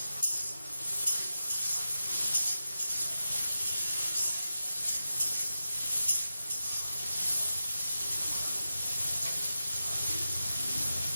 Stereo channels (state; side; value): inverted; both; correlation -0.91